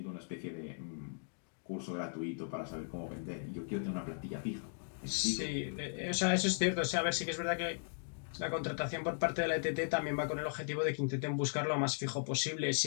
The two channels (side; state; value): right; silent; digital silence